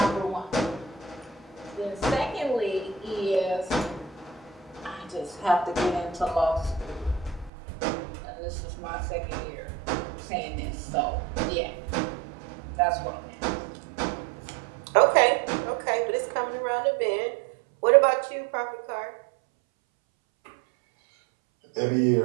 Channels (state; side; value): drops out; left; at 7.5 s